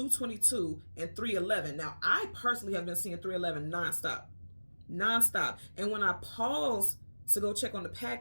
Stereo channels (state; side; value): inverted; both; correlation -1.00